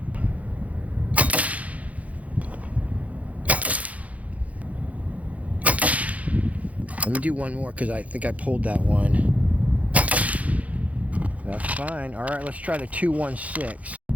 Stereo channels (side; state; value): left; late; 0.068 ms